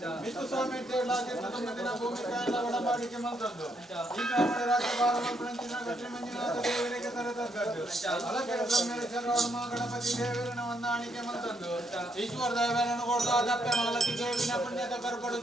ಮಿತ್ತು ಸ್ವಾಮಿ ದಿನ ಭೂಮಿ ಕಾಯಲ ಒಡಂಬಡಿಕೆ ಮಂತದ್ದು ಈ ಕಾಮಡೆ ರಾಜ್ಯ ಬಾಲಮಂತ್ರಂಚಿನ ಗಟ್ಟಿ ಮಂಜುನಾಥ ದೇವರಿಗೆ ತರತಕ್ಕದ್ದು ಅಲಕೆ ಬ್ರಹ್ಮೇಶ್ವರ ಗಣಪತಿ ದೇವರನ ಹೊಂದಾಣಿಕೆ ಮಂತದ್ದು ಈಶ್ವರ ದೇವರನ್ನು ಕೊಡ್ದ ದಪ್ಪೆ ಮಾಲತಿ ದೇವಿನ ಪುಣ್ಯದ ಕರ್ಪಡು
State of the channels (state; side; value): normal; both; correlation 0.75